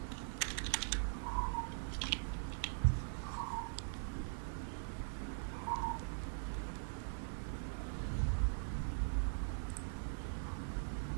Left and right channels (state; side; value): silent; left; digital silence